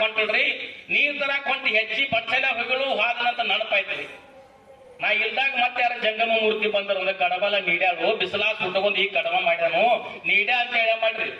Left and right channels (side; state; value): both; identical; correlation 1.00